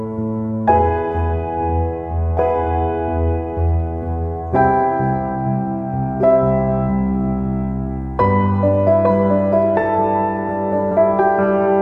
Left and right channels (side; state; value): both; identical; correlation 1.00